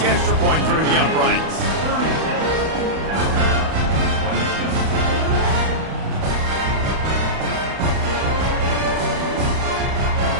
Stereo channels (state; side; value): late; left; 31 ms